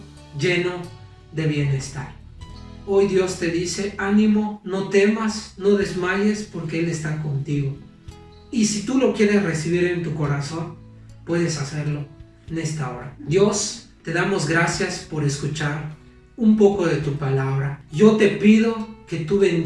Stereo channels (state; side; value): identical; both; correlation 1.00